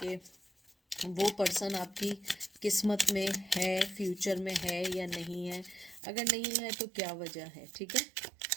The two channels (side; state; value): left; drops out; at 6.0 s